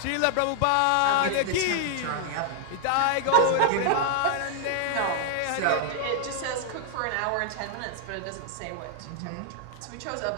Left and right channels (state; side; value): different; both; correlation -0.01